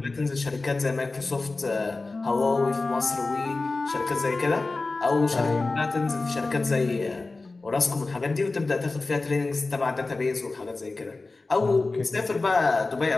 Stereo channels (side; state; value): right; quieter; 3.5 dB